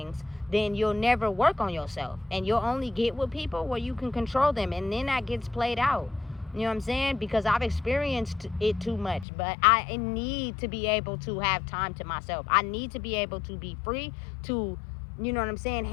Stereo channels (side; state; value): right; drops out; at 9.2 s